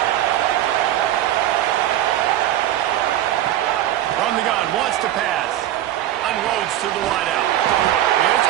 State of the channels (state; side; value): quieter; left; 12.8 dB